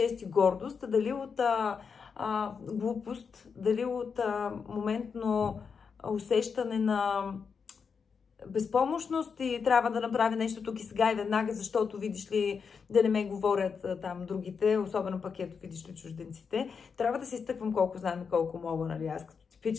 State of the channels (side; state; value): right; quieter; 5.9 dB